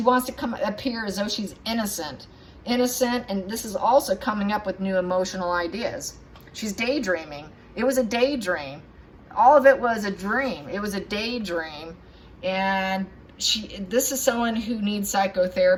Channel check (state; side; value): identical; both; correlation 1.00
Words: wants to appear as though she's innocent. Innocent, and this is also coming up with new emotional ideas. She's daydreaming. It was a daydream. All of it was a dream. It was a daydream. And this is someone who needs